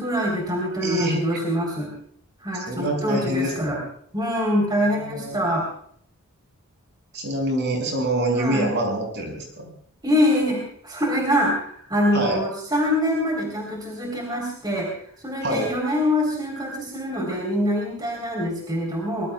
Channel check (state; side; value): normal; both; correlation 0.43